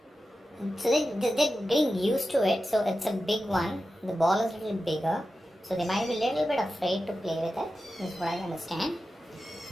So they're getting used to it. So it's a big one. The ball is a little bigger. So they might be a little bit afraid to play with it. This is what I understand.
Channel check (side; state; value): both; normal; correlation 0.92